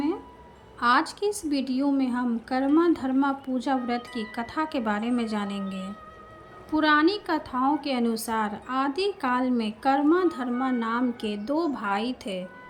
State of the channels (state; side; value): identical; both; correlation 1.00